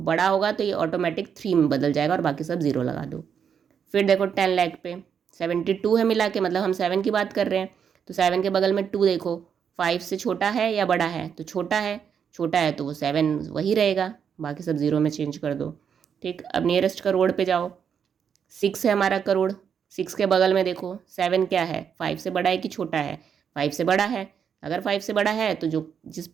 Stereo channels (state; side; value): quieter; left; 7.5 dB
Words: होगा तो ये ऑटोमेटिक 3 में बदल जाएगा और बाकी सब 0 लगा दो। फिर देखो 10 लाख पे 72 है मिला के, मतलब हम 7 की बात कर रहे हैं, तो 7 के बगल में 2 देखो, 5 से छोटा है या बड़ा है, तो छोटा है, छोटा है तो वो 7 वही रहेगा, बाकी सब 0 में चेंज कर दो, ठीक। अब नियरेस्ट करोड़ पे जाओ, 6 है हमारा करोड़, 6 के बगल में देखो 7 क्या है, 5 से बड़ा है कि छोटा है, 5 से बड़ा है। अगर 5 से बड़ा है तो जो जिस